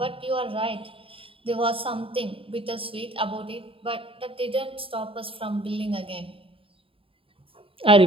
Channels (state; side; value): late; left; 0.27 ms